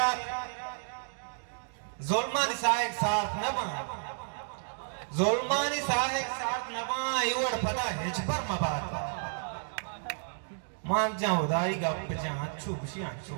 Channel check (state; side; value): silent; left; digital silence